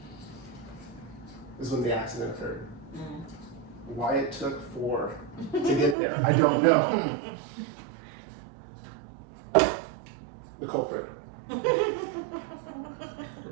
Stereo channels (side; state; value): left; drops out; at 6.0 s